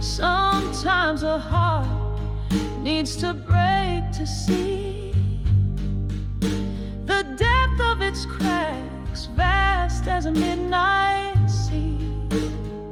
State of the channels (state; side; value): identical; both; correlation 1.00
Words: a heart needs to break to see the depth of its cracks, vast as a midnight sea.